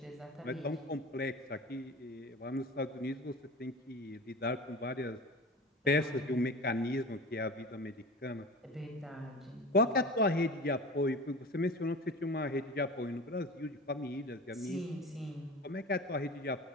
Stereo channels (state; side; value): normal; both; correlation 0.34